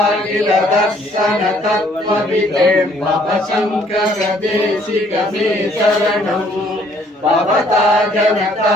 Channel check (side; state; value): both; normal; correlation 0.62